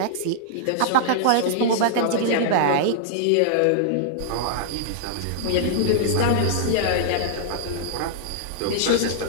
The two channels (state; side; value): different; both; correlation -0.01